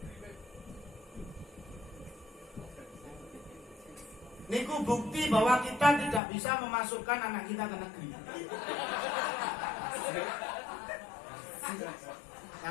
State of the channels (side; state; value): right; drops out; at 6.2 s